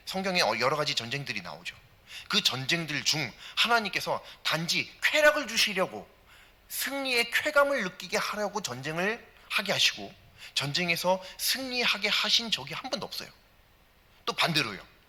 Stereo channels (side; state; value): both; identical; correlation 1.00